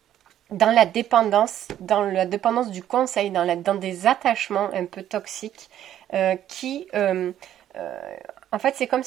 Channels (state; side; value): quieter; left; 11.3 dB